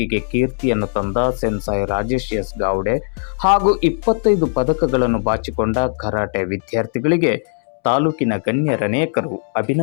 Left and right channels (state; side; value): silent; right; 67 dB below the other